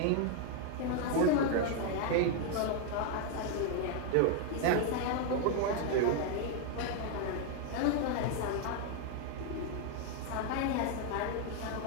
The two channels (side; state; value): both; different; correlation 0.00